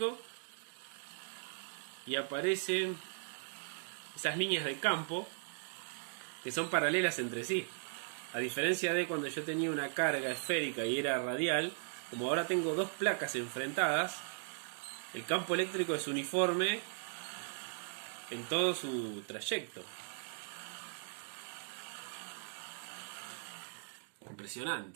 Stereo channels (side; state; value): left; silent; digital silence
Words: y aparecen esas líneas de campo que son paralelas entre sí. A diferencia de cuando yo tenía una carga esférica y era radial, como ahora tengo dos placas enfrentadas, el campo eléctrico es uniforme en todo su trayecto.